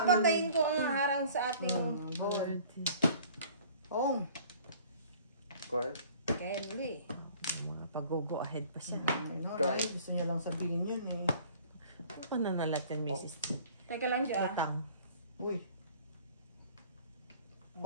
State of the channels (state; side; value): inverted; both; correlation -0.51